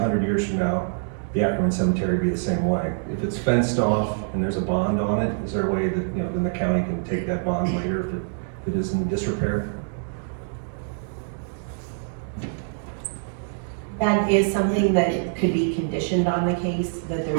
years from now the Ackerman Cemetery be the same way. If it's fenced off and there's a bond on it, is there a way that then the county can take that bond later if it is in disrepair? That is something that could be conditioned on the case, that there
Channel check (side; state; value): left; silent; digital silence